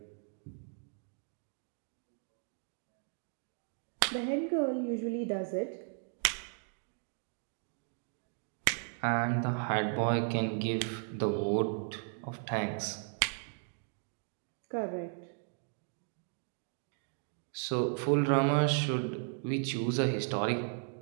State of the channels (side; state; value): left; silent; 54 dB below the other